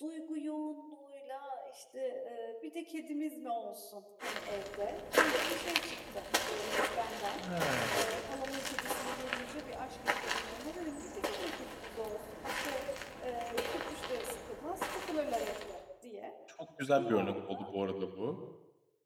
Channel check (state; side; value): identical; both; correlation 1.00